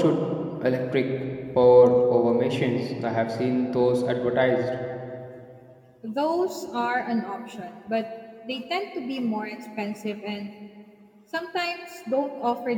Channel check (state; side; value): identical; both; correlation 1.00